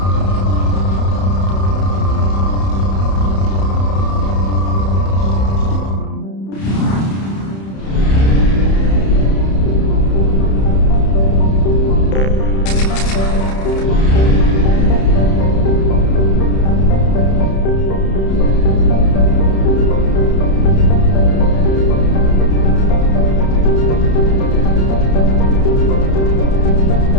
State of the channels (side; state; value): right; late; 31 ms